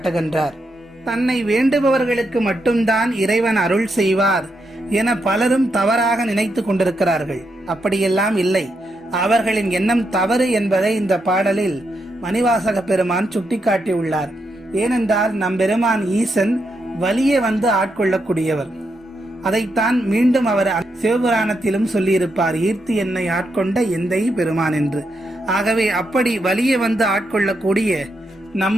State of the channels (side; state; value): both; normal; correlation 0.82